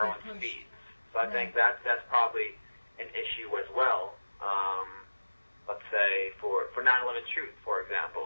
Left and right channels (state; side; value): inverted; both; correlation -1.00